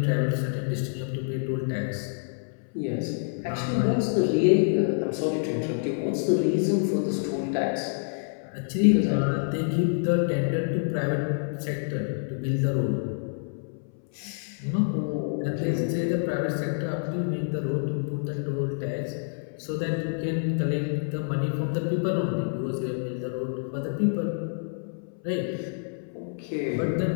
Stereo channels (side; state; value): right; silent; 60 dB below the other